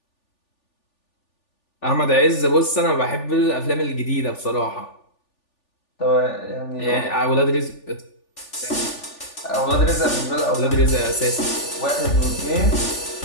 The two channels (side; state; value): right; late; 3.4 ms